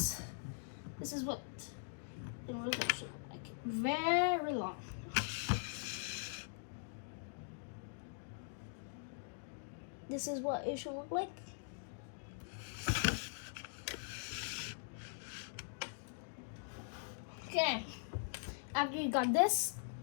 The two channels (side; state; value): right; silent; digital silence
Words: is what it will look like. Very long. This is what it should look like. Okay, after you got this,